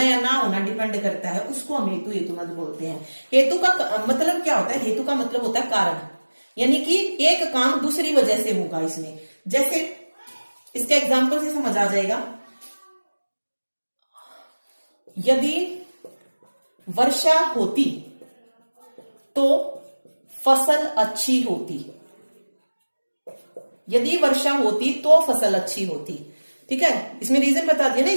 या ना होना डिपेंड करता है, उसको हम हेतु हेतु मद बोलते हैं। हेतु का मतलब क्या होता है, हेतु का मतलब होता है कारण, यानी कि एक काम दूसरी वजह से होगा इसमें। जैसे इसके एग्जाम्पल से समझ आ जाएगा, यदि वर्षा होती तो फसल अच्छी होती, यदि वर्षा होती तो फसल अच्छी होती। ठीक है, इसमें रीजन बता दिया ना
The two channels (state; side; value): inverted; both; correlation -1.00